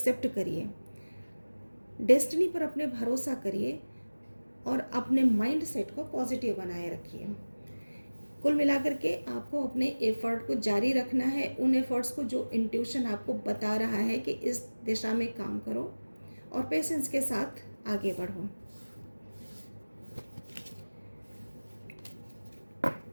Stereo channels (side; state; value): both; inverted; correlation -1.00